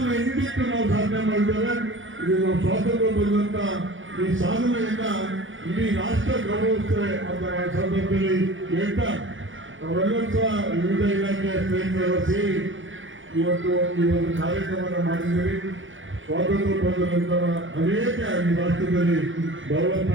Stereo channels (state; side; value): late; left; 0.56 ms